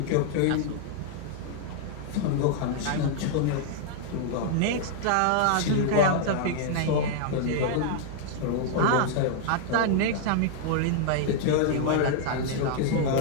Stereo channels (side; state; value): both; different; correlation -0.01